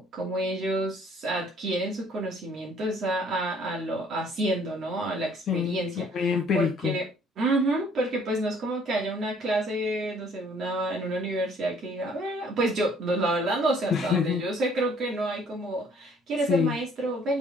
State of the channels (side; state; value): both; normal; correlation 0.59